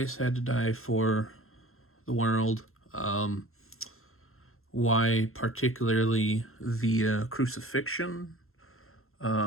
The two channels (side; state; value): right; late; 0.62 ms